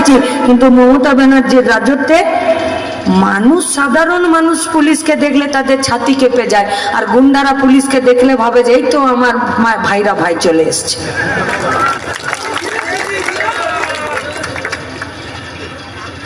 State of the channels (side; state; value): both; identical; correlation 1.00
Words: কিন্তু মমতা ব্যানার্জির রাজত্বে মানুষ, সাধারণ মানুষ পুলিশকে দেখলে তাদের ছাতি কেঁপে যায়, আর গুন্ডারা পুলিশকে দেখলে ভাবে যে এই তো আমার ভাইরা ভাই চলে এসছে।